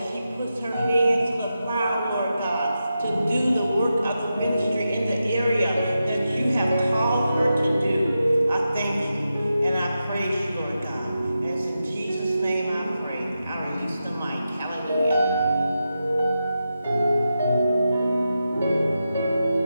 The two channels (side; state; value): both; inverted; correlation -0.89